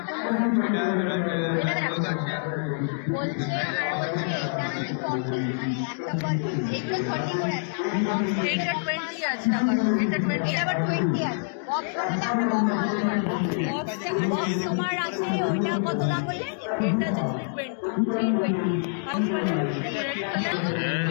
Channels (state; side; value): silent; right; digital silence